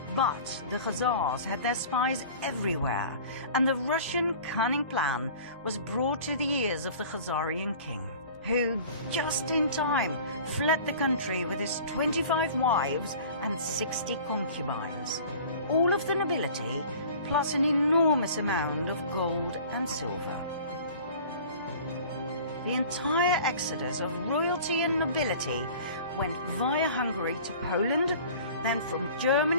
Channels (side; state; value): both; inverted; correlation -0.44